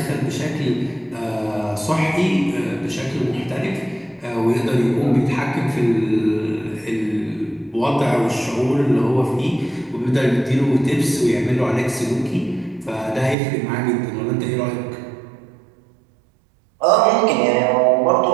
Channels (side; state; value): left; drops out; at 13.4 s